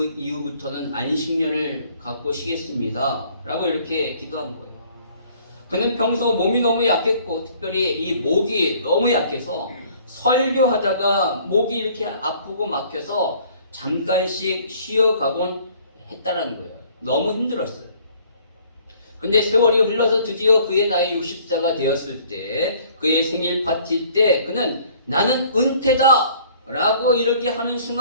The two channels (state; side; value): inverted; both; correlation -0.57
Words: 이후부터는 안식년을 갖고 쉬겠습니다. 라고 이렇게 기도한 거예요. 그는 평소 몸이 너무 약했고 특별히 이 목이 너무 약해서 설교하다가 목이 이렇게 아프고 막혀서 잠깐씩 쉬어가곤 했다는 거예요. 너무 힘들었어요. 근데 세월이 흘러서 드디어 그의 나이 60세가 되었을 때 그의 생일 파티 때 그는 나는 은퇴다 라고 이렇게 하는